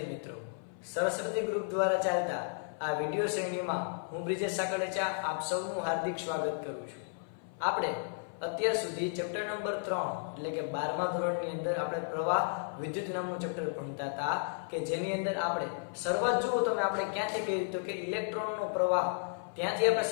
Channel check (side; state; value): right; silent; 55 dB below the other